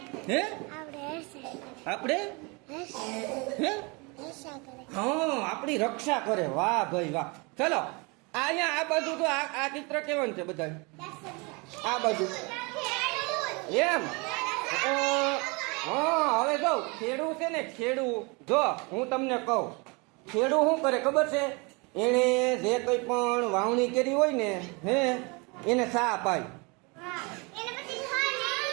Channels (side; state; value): left; quieter; 29.1 dB